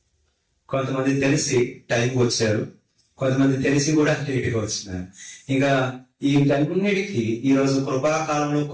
కొంతమంది తెలిసి టైంకి వచ్చారు, కొంతమంది తెలిసి కూడా లేటుగా వచ్చినారు. ఇంకా వీటన్నిటికీ ఈరోజు కృపాకాలంలో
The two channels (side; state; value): both; identical; correlation 1.00